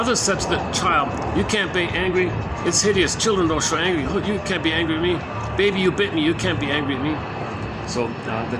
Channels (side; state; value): both; identical; correlation 1.00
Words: said to the child, "You can't be angry. It's hideous. Children don't show anger. You can't be angry at me. Baby, you bit me. You can't be angry at me." So the